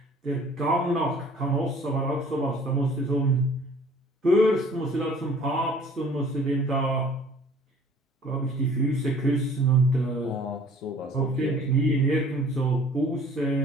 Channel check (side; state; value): both; normal; correlation 0.52